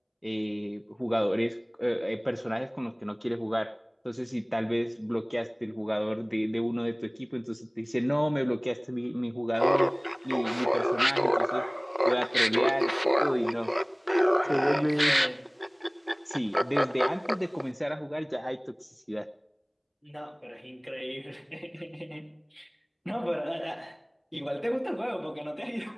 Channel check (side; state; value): both; identical; correlation 1.00